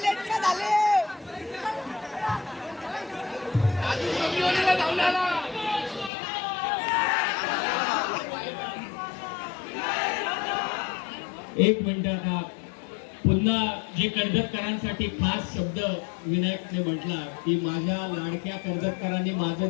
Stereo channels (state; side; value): drops out; right; at 6.1 s